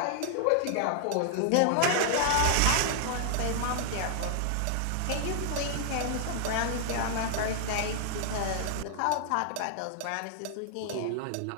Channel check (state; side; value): different; both; correlation -0.01